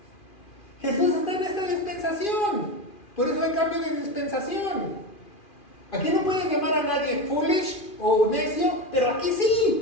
Jesús está en esta dispensación. Por eso hay cambio de dispensación. Aquí no pueden llamar a nadie foolish o necio, pero aquí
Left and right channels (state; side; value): late; right; 2.4 ms